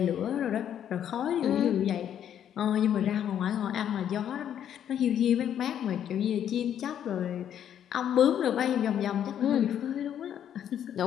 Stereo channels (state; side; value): quieter; right; 9.8 dB